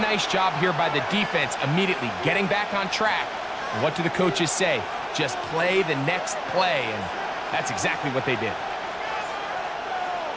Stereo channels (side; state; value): both; identical; correlation 1.00